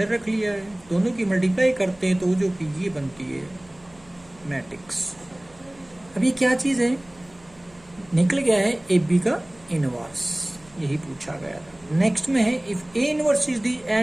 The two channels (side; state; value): right; noise; hum, 27 dB below the sound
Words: रख लिया है. दोनों की मल्टीप्लाई करते हैं तो जो कि ये बनती है मैट्रिक्स. अब ये क्या चीज है, निकल गया है ए बी का इनवर्स, यही पूछा गया था. नेक्स्ट में है इफ ए इनवर्स इज दी